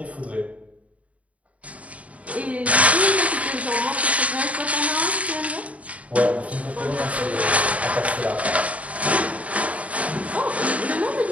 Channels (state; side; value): late; left; 0.067 ms